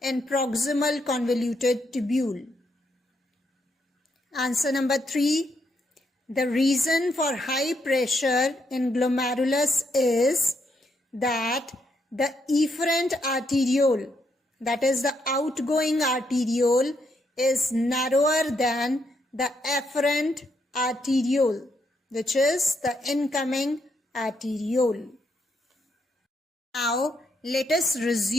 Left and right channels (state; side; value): normal; both; correlation 0.77